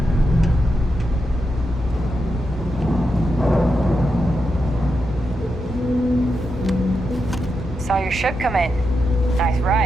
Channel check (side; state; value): both; normal; correlation 0.86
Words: Saw your ship come in. Nice